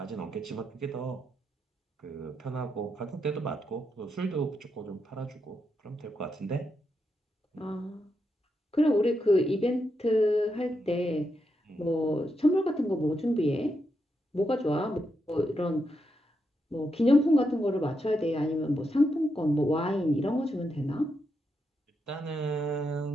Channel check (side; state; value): both; normal; correlation 0.83